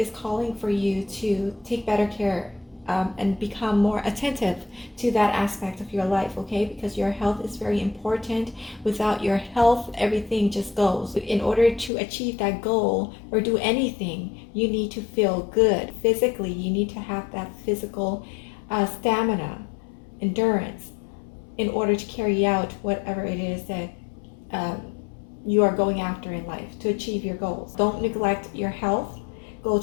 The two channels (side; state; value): right; drops out; at 11.9 s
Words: calling for you to take better care and become more attentive to that aspect of your life, okay? Because your health is very important. Without your health, everything just goes. In order to achieve that goal or do anything, you need to feel good physically. You need to have that physical stamina, endurance, in order to carry out whatever it is that you are going after in life to achieve your goals. Don't neglect your health. Go